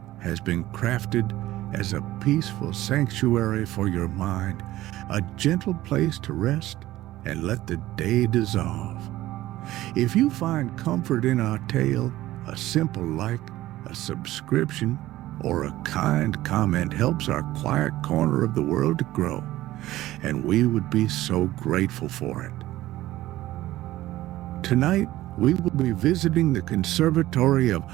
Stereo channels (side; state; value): left; quieter; 15.8 dB